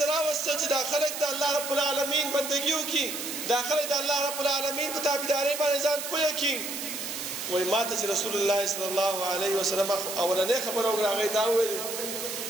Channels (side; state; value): right; noise; hiss, 6 dB below the sound